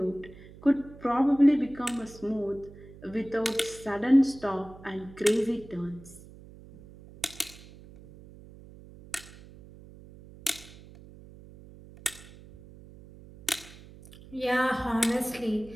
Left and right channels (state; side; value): noise; right; hum, 19 dB below the sound